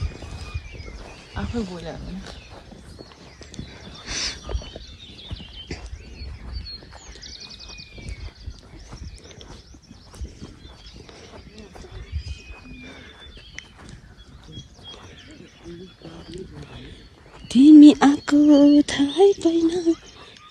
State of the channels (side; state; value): both; identical; correlation 1.00